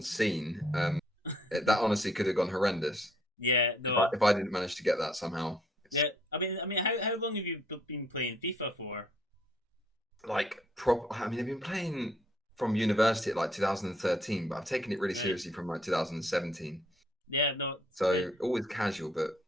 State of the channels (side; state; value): both; normal; correlation 0.65